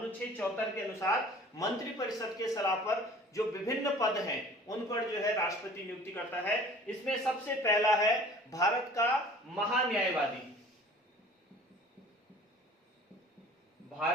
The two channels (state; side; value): normal; both; correlation 0.47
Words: 74 के अनुसार मंत्री परिषद के सलाह पर जो विभिन्न पद हैं उन पर जो है राष्ट्रपति नियुक्ति करता है। इसमें सबसे पहला है भारत का महान्यायवादी।